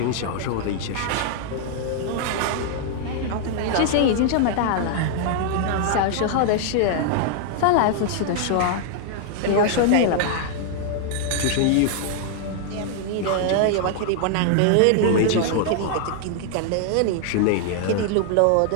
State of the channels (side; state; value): both; different; correlation 0.00